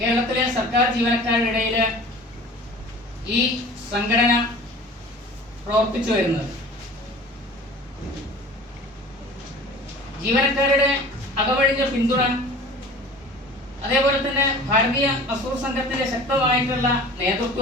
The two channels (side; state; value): both; normal; correlation 0.42